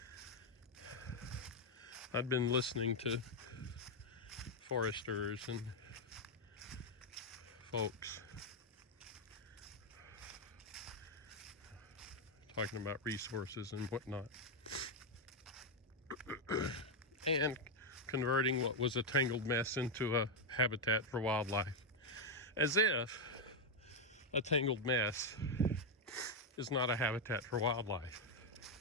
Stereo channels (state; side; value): normal; both; correlation 0.02